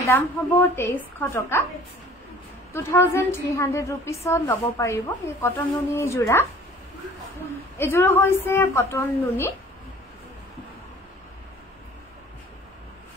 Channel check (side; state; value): both; normal; correlation 0.50